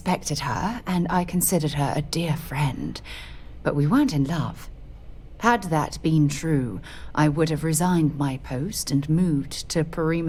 her, and I considered her a dear friend, but we weren't in love. Had that been true, I would have resigned my post and moved to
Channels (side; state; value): both; identical; correlation 1.00